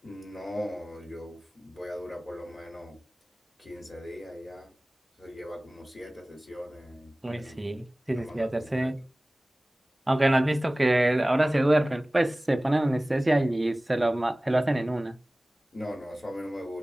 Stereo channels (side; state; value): both; normal; correlation 0.98